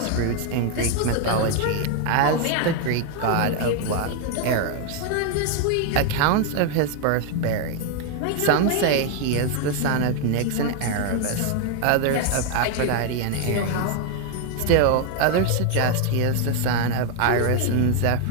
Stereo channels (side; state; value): both; different; correlation 0.01